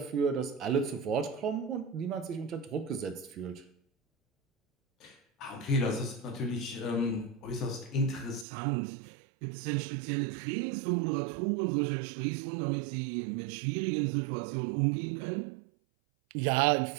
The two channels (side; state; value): left; drops out; at 8.5 s